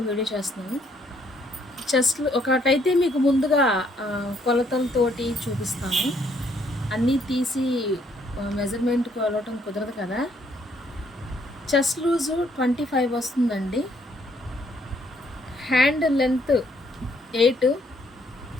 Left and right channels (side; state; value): both; normal; correlation 0.68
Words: వీడియో చేస్తున్నాను. చెస్ట్లు ఒకటైతే మీకు ముందుగా కొలతలతోటి చూపిస్తాను. అన్నీ తీసి మెజర్మెంట్ కొలవటం కుదరదు కదా. చెస్ట్ లూజు 25 వస్తుందండి. హ్యాండ్ లెంత్ 8